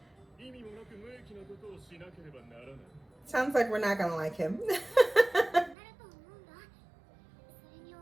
意味もなく無益なことをしなければならない。 Sounds like we're not gonna like him.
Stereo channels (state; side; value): drops out; left; at 5.8 s